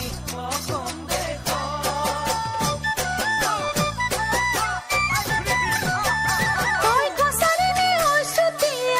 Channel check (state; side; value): identical; both; correlation 1.00